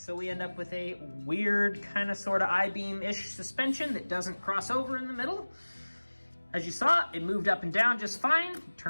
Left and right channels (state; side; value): inverted; both; correlation -1.00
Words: we end up with a weird kind of sort of I-beam-ish suspension that doesn't cross over in the middle. As you saw, it moved up and down just fine,